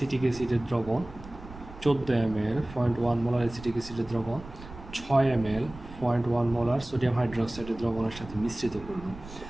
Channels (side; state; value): right; noise; rumble, 16 dB below the sound